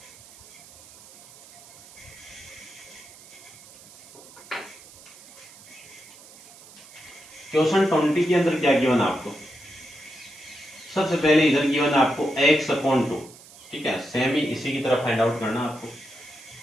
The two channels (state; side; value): noise; right; hiss, 21 dB below the sound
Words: क्वेश्चन 20 के अंदर क्या गिवन आपको, सबसे पहले इधर गिवन आपको x/2, ठीक है। सेम ही इसी की तरफ फाइंड आउट करना आपको।